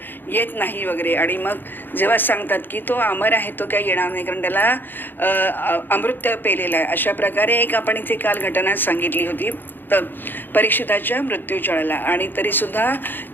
येत नाही वगैरे. आणि मग जेव्हा सांगतात की तो अमर आहे, तो काही येणार नाही, कारण त्याला अमृत पेलेलं आहे. अशा प्रकारे एक आपण इथे काल घटना सांगितली होती तर परीक्षिताच्या मृत्यूच्या वेळेला. आणि तरीसुद्धा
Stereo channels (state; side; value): late; right; 0.094 ms